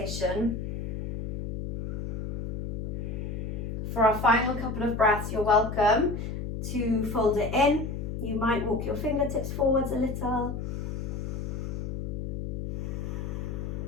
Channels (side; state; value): left; noise; hum, 5 dB below the sound